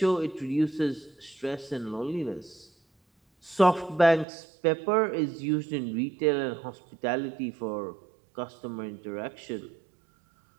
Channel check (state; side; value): drops out; left; at 4.2 s